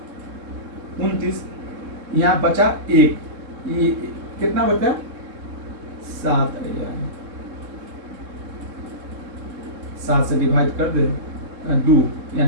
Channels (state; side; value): late; left; 3.7 ms